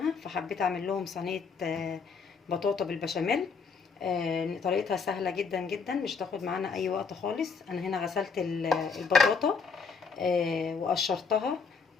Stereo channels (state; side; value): quieter; right; 5.3 dB